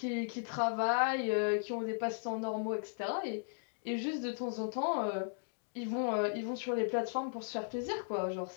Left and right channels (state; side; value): silent; right; digital silence